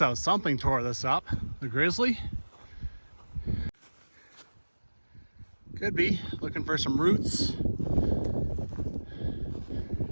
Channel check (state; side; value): inverted; both; correlation -1.00